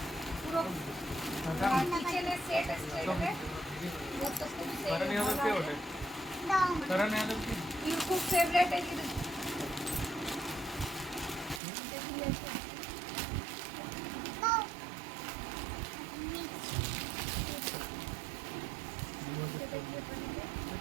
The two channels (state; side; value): drops out; left; at 11.6 s